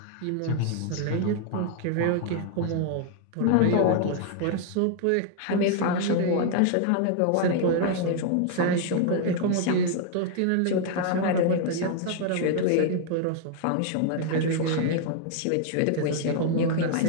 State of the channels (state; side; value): different; both; correlation 0.00